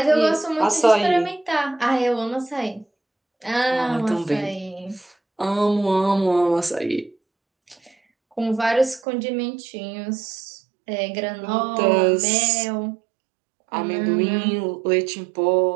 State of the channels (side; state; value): left; drops out; at 9.0 s